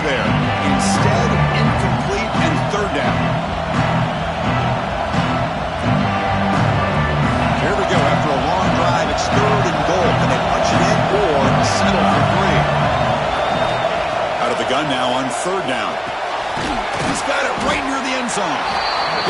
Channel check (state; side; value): identical; both; correlation 1.00